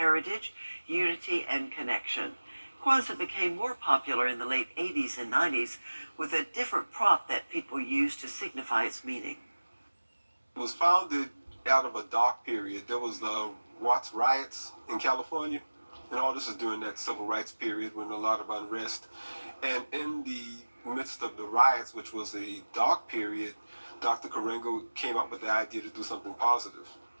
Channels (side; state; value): both; inverted; correlation -1.00